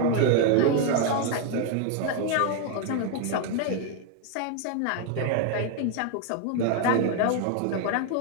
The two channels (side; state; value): both; different; correlation 0.00